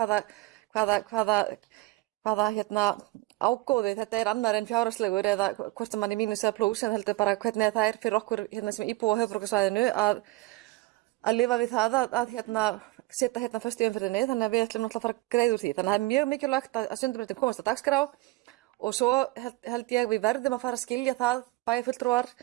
Hvaða ágóði þetta er annar en fjárhagslegur eða hvort sem hann er mínus eða plús en heldur bara hvernig það er fyrir okkur hérna sem íbúa á höfuðborgarsvæðinu að lifa við það að setja hérna föst í umferðinni þannig að við ætlum náttúrulega að fara að greiða úr því. Þannig að það er mjög mikilvægt að Sundabrautin komast á dagskrá og svo held ég við verðum að fara að skilja það bæjarfulltrúar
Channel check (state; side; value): quieter; left; 20.5 dB